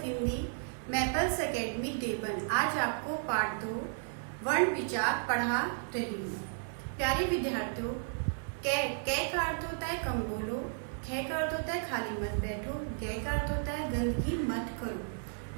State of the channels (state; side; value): silent; left; digital silence